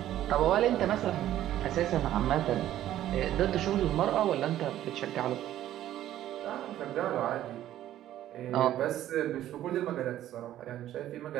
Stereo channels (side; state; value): left; quieter; 12.7 dB